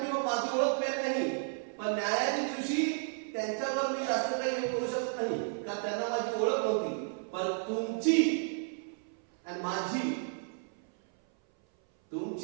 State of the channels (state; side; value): silent; left; 56 dB below the other